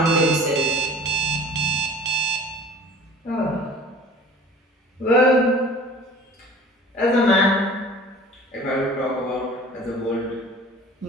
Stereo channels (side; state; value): both; normal; correlation 0.44